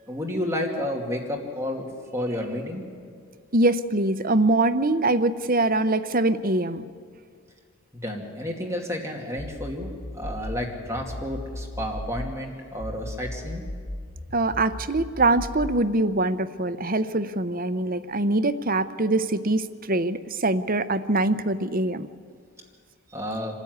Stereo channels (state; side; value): normal; both; correlation 0.25